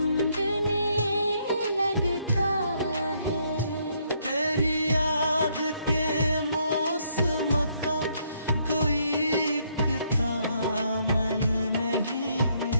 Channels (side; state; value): both; inverted; correlation -0.71